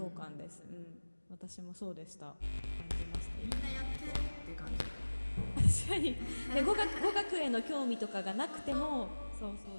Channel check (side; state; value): both; inverted; correlation -1.00